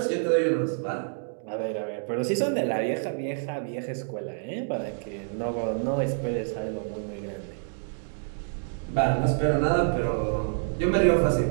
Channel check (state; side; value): silent; left; digital silence